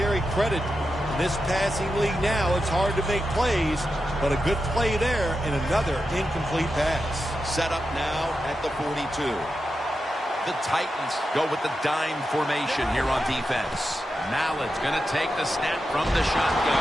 credit. In this passing league now, it's hard to make plays, but a good play there and another incomplete pass. Set up now at the 42. The Titans go with the dime formation here on defense. Mallett's going to take the snap from the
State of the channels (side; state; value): both; normal; correlation 0.89